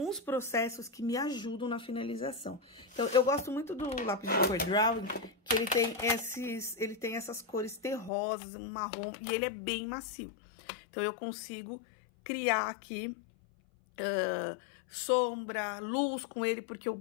processos que me ajudam na finalização. Então, eu gosto muito do lápis de cor Drawing, que ele tem essas cores terrosas, um marrom, e ele é bem macio. Então, eu consigo criar aqui sombra, luz com ele, porque o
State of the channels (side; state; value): right; drops out; at 8.1 s